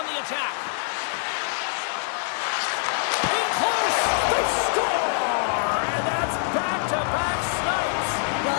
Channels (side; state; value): right; silent; digital silence